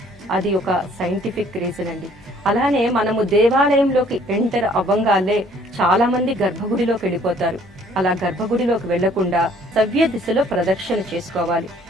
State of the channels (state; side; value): normal; both; correlation 0.59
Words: అది ఒక సైంటిఫిక్ రీజన్ అండి. అలానే మనము దేవాలయంలోకి ఎంటర్ అవ్వంగానే చాలా మంది గర్భగుడిలోకి వెళ్ళిపోతారు. అలా గర్భగుడిలోకి వెళ్లకుండా సవ్య దిశలో ప్రదక్షిణ చేసుకోవాలి.